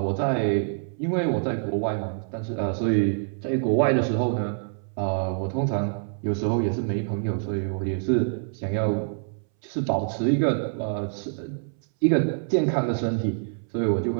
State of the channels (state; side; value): silent; left; 61 dB below the other